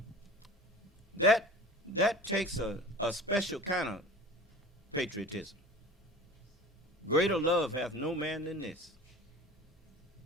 That takes a special kind of patriotism. Greater love hath no man than this,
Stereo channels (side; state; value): both; normal; correlation 0.39